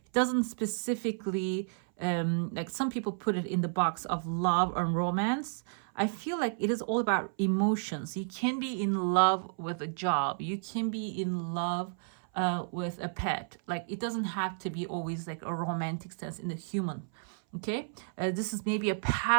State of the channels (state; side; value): silent; left; 57 dB below the other